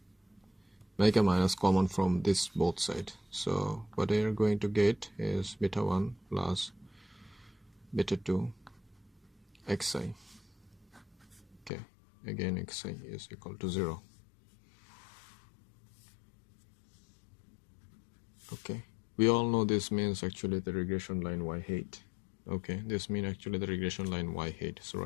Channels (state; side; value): drops out; right; at 11.7 s